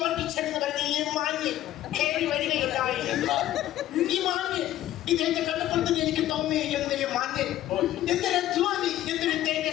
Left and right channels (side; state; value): right; quieter; 13.5 dB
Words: വർഗീച്ചെന്ന് പറഞ്ഞ ഈ മാന്യൻ കയറി വരികയുണ്ടായി. ഈ മാന്യൻ ഇദ്ദേഹത്തെ കണ്ടപ്പോഴത്തേക്ക് എനിക്ക് തോന്നി എന്തൊരു മാന്യൻ, എന്തൊരു അധ്വാനി, എന്തൊരു